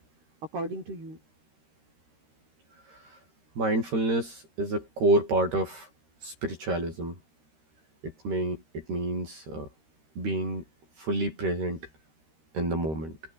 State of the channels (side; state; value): left; late; 13 ms